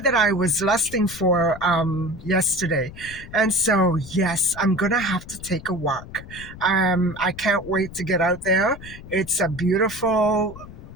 I was lusting for yesterday. And so, yes, I'm going to have to take a walk. I can't wait to get out there. It's a beautiful,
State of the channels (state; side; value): noise; left; rumble, 16 dB below the sound